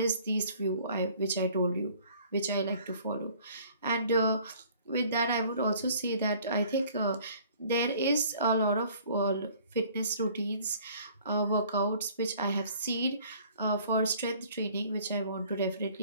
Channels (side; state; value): both; inverted; correlation -0.54